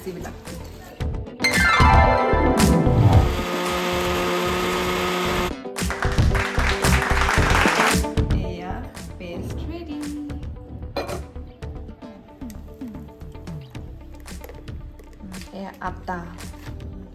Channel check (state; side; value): identical; both; correlation 1.00